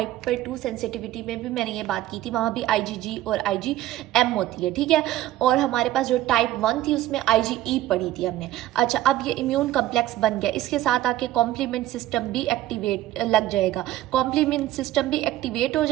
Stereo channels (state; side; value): quieter; left; 14.7 dB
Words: 2 सेंसिटिविटी में भी मैंने ये बात की थी, वहाँ भी IgG और IgM होती है। ठीक है, और हमारे पास जो टाइप 1 थी, उसमें IgE पढ़ी थी हमने। अच्छा, अब ये इम्यून कम्प्लेक्स बन गया, इसके साथ आके कॉम्प्लीमेंट सिस्टम भी एक्टिवेट लग जाएगा, कॉम्प्लीमेंट सिस्टम भी एक्टिवेट हो